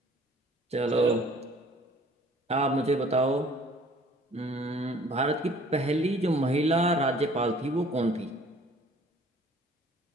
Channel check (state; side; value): normal; both; correlation 0.54